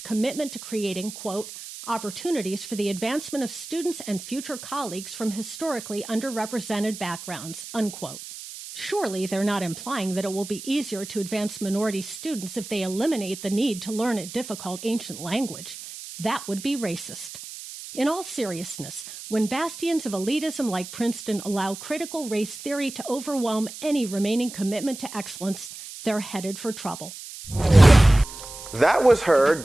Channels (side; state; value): right; noise; hiss, 12 dB below the sound